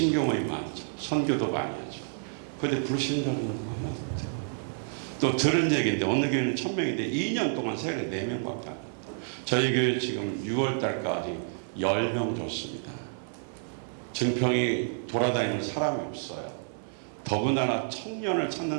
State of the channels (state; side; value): silent; left; 58 dB below the other